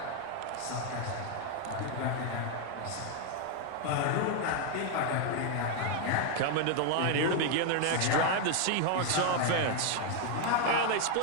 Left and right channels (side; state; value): both; different; correlation 0.01